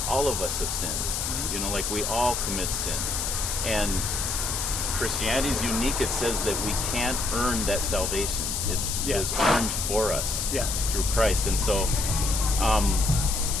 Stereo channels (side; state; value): left; noise; hiss, 1 dB below the sound